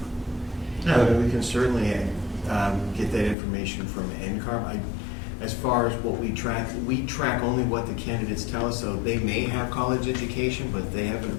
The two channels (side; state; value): right; drops out; at 3.4 s